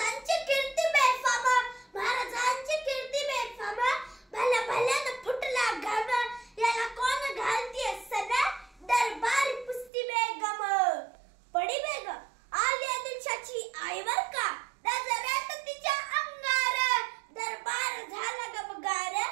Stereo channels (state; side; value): drops out; left; at 9.9 s